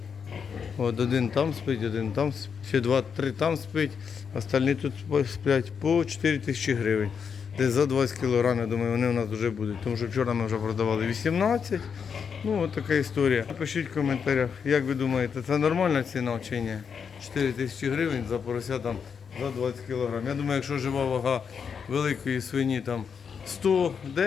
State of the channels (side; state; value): right; quieter; 6.6 dB